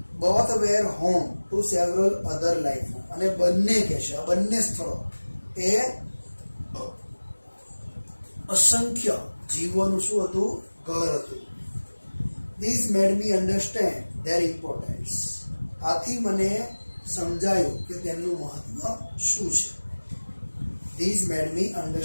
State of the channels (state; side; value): inverted; both; correlation -1.00